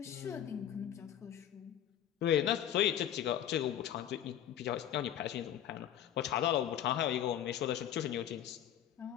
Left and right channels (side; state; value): right; quieter; 10.9 dB